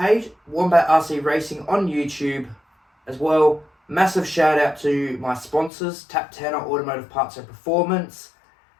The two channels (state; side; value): drops out; right; at 5.7 s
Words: Wombat RC Racing on YouTube as well. Massive shout out to my sponsors, Tap Tanner Automotive Parts and Performance,